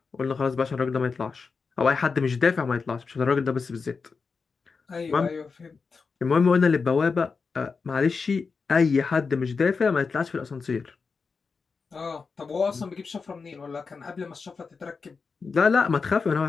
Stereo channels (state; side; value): quieter; right; 4.9 dB